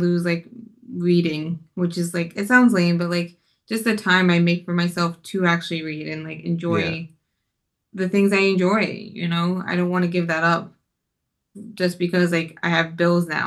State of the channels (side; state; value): both; identical; correlation 1.00